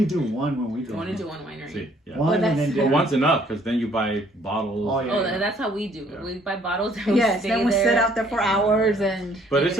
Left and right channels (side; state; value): both; normal; correlation 0.62